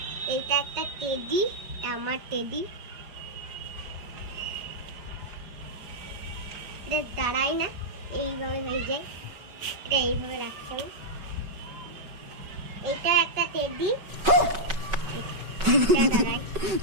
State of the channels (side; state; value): left; late; 5.3 ms